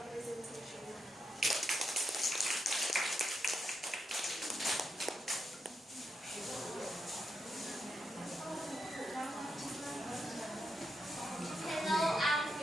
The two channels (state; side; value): normal; both; correlation 0.84